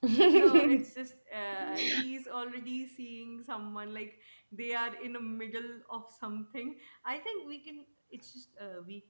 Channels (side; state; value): both; inverted; correlation -1.00